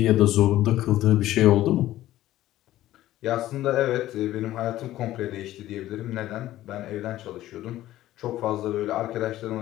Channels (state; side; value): quieter; right; 14.5 dB